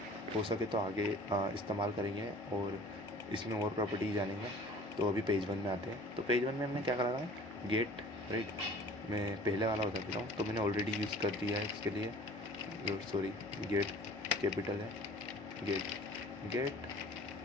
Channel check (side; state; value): both; normal; correlation 0.48